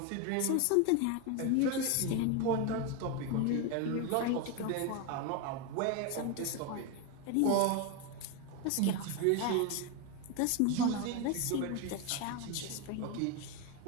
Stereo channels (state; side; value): different; both; correlation 0.02